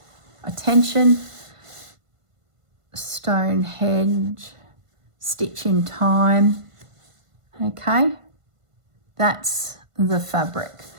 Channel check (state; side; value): late; left; 1.5 ms